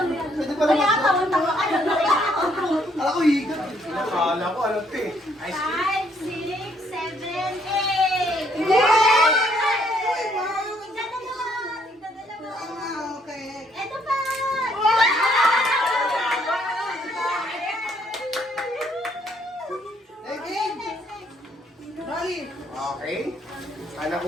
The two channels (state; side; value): normal; both; correlation 0.68